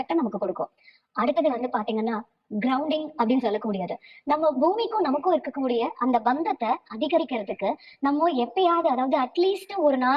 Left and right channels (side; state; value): both; identical; correlation 1.00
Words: நமக்கு கொடுக்கும். அடுத்தது பாத்தீங்கன்னா கிரவுண்டிங் அப்படின்னு சொல்லக்கூடியது. நம்ம பூமிக்கும் நமக்கும் இருக்கக்கூடிய அந்த பந்தத்தை அதிகரிக்கிறதுக்கு நம்ம எப்பயாவது, அதாவது அட்லீஸ்ட் ஒரு